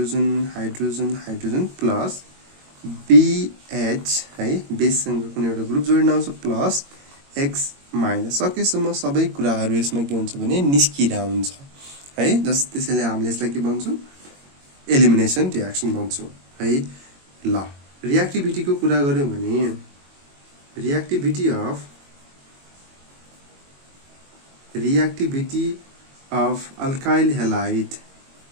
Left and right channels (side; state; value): left; late; 22 ms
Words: hydrogen hydrogen plus BH है, बेससँग कुनै एउटा ग्रुप जोडिन आउँछ प्लस X माइनस। सकेसम्म सबै कुराहरू यसमा के हुन्छ भने निस्किरा हुन्छ है। त्यसैले हामीले यसलाई के भन्छौँ, एलिमिनेसन रियाक्सन भन्छौँ है। ल, रियाक्टिभिटीको कुरा गर्यौँ भने reactivity of alkyl halide